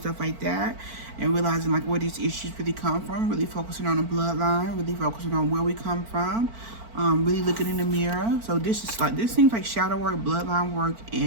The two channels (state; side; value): late; left; 4.5 ms